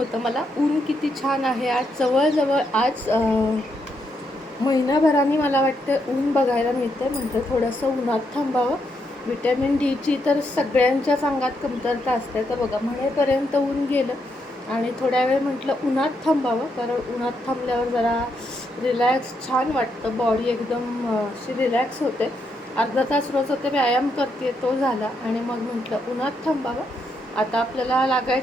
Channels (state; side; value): normal; both; correlation 0.79